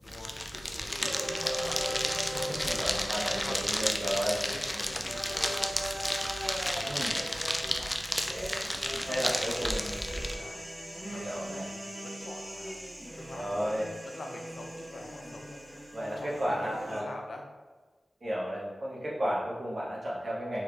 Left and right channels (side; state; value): both; normal; correlation 0.97